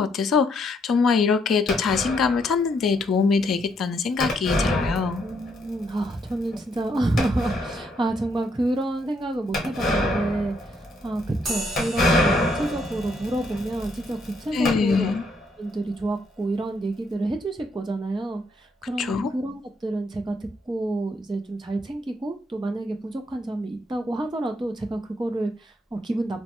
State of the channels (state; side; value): normal; both; correlation 0.73